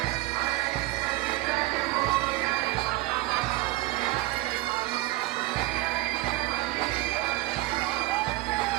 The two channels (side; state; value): left; quieter; 19.0 dB